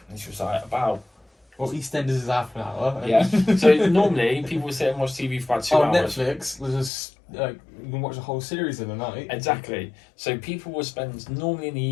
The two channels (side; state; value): right; drops out; at 6.9 s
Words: And she was like, about... Well, EastEnders is half an hour. Yeah. So normally people would sit and watch TV for about 2 on hours. Netflix, there's just you can watch a whole series in a night. Exactly. So people will spend normally in the